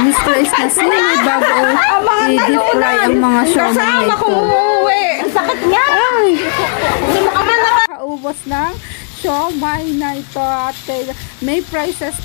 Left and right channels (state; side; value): silent; right; digital silence